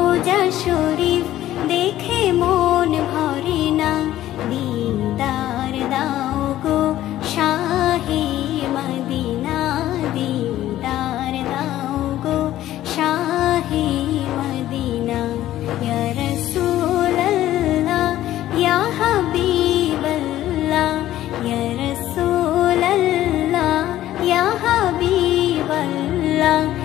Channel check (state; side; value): quieter; right; 13.7 dB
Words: শরীফ দেখে মন ভরে না। দিদার দাও গো শাহে মদিনা, দিদার দাও গো শাহে মদিনা। ইয়া রাসূলাল্লাহ ইয়া হাবিবাল্লাহ,